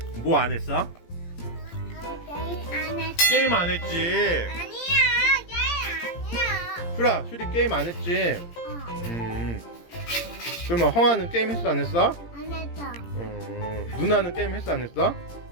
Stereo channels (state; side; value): late; right; 17 ms